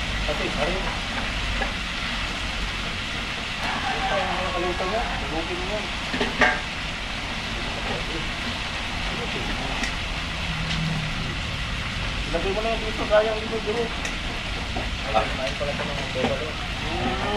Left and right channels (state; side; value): identical; both; correlation 1.00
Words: Pati, pare. Ito yung nakalimutan niya. Subukin mo yan. Ilagay mo na yan dito, sayang dito, dito. Ayun pala ito ng pera doon.